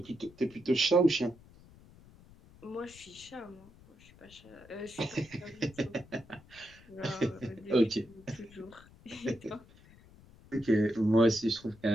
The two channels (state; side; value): noise; left; rumble, 23 dB below the sound